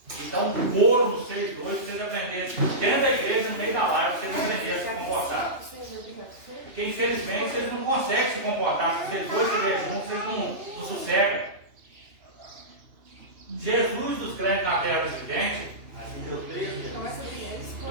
e dar um couro no 6.2 para vocês aprenderem dentro da igreja, no meio da live, para vocês aprenderem a se comportar. Porque infelizmente vocês não conseguem se comportar. Se vocês dois estiverem juntos, vocês não sossegam. Jesus dos crentes na terra dos viventes. Aqui deu 13.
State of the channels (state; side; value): late; left; 2.9 ms